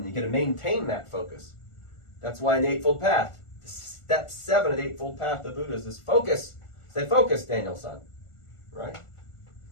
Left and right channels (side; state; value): right; late; 1.4 ms